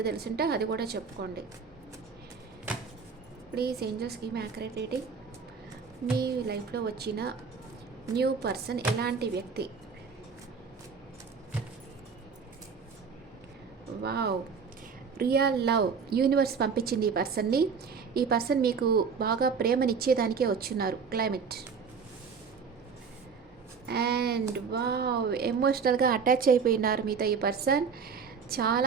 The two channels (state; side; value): quieter; left; 5.8 dB